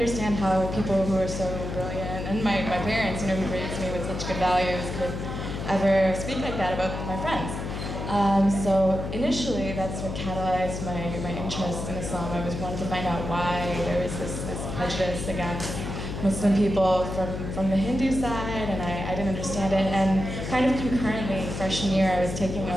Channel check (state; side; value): noise; left; hum, 5 dB below the sound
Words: how people who are so brilliant, and my parents, who raised me with such good values, could ever speak like that about my friends. So initially, that's what catalyzed my interest in Islam. I was wanting to find out why there was this prejudice against Muslim people from the Hindu side, and I didn't understand it. And kind of concurrently, freshman year, I was taking